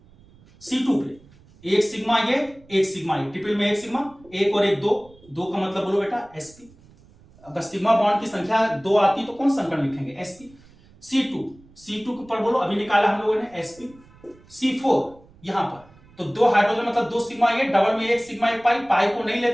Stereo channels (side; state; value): right; noise; rumble, 26 dB below the sound